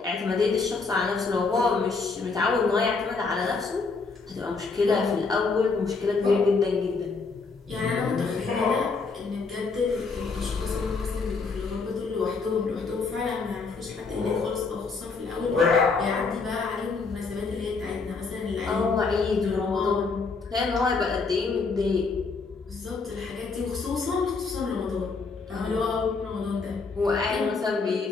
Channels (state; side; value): quieter; right; 4.4 dB